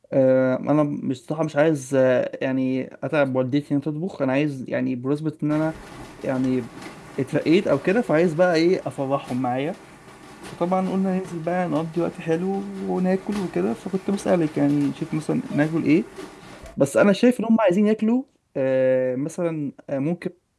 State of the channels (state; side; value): identical; both; correlation 1.00